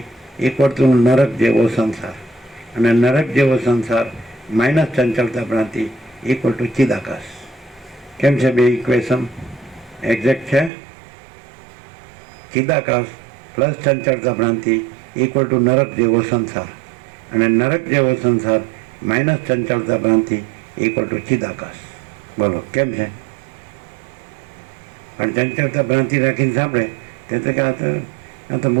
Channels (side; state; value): left; drops out; at 10.7 s